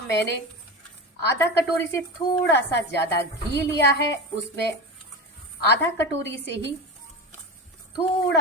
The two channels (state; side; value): normal; both; correlation 0.25